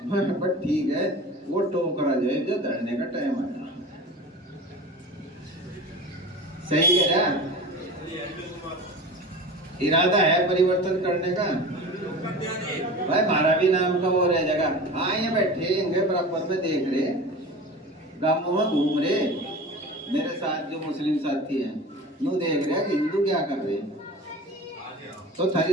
बट ठीक है वो टोकरा जो है जो धरने का टाइम आया। सही कह रहा? इरादा है परिवर्तन करने का। भाई हमारा भी नाम का वो रह जगह, हाँ ये बैठे होंगे बराबर में देख रहे, गांवों में घूम रहे, मेरे साथ जो मुस्लिम साथी हैं यूँ देख रहे हैं कि हिंदू क्या कर रहे हैं। तो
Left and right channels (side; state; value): both; normal; correlation 0.34